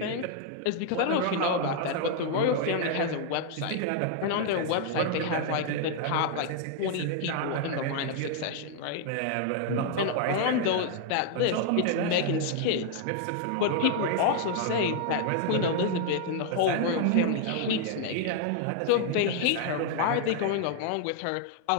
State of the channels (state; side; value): different; both; correlation 0.00